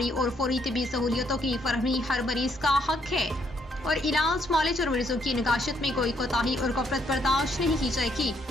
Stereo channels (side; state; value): both; normal; correlation 0.70